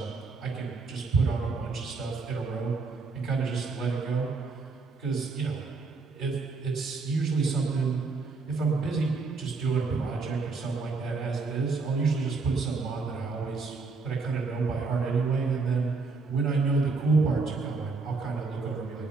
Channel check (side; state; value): left; quieter; 4.2 dB